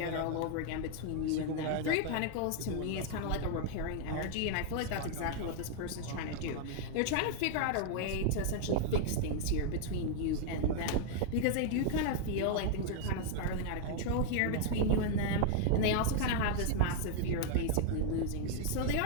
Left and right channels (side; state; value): both; different; correlation 0.00